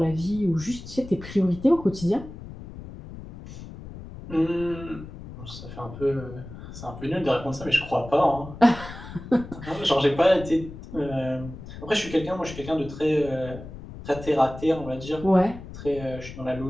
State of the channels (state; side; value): noise; left; rumble, 13 dB below the sound